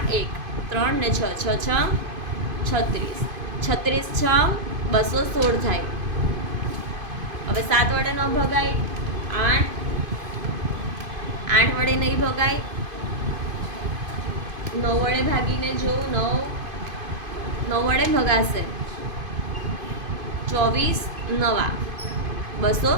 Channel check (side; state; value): left; late; 2.5 ms